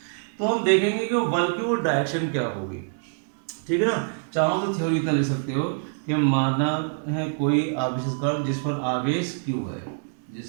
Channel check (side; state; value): left; silent; digital silence